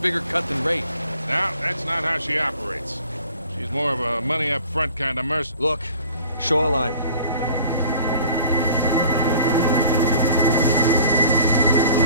cut than Ray? No, that's not how she operates. She's more of a money-up-front kind of merc. Look, shoreline.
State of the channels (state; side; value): inverted; both; correlation -0.49